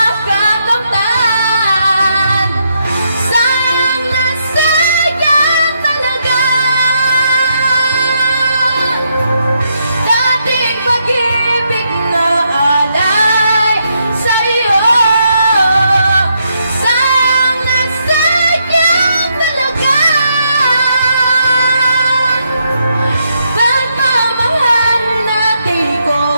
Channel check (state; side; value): inverted; both; correlation -0.78